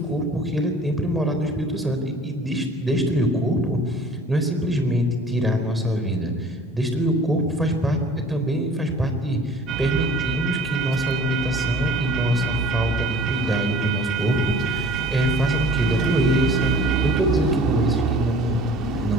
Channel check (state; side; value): normal; both; correlation 0.48